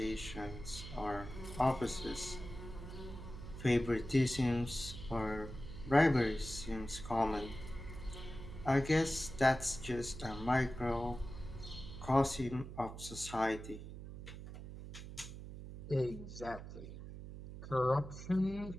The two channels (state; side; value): noise; right; hum, 11 dB below the sound